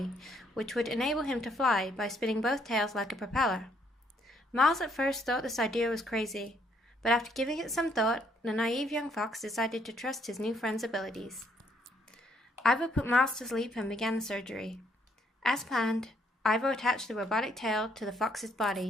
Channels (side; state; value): both; normal; correlation 0.69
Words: which would enable him to fly by spinning both tails like a propeller. Miles at first thought this idea was crazy, but after giving it some thought, the naive young fox decided to trust his new friend's abilities. Ivo put Miles to sleep and began the surgery. As planned, Ivo attached the robotic tail to the fox's